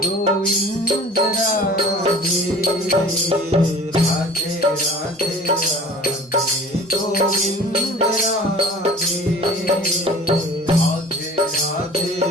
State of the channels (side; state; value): both; normal; correlation 0.44